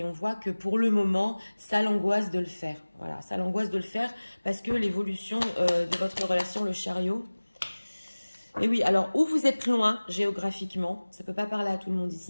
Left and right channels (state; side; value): inverted; both; correlation -1.00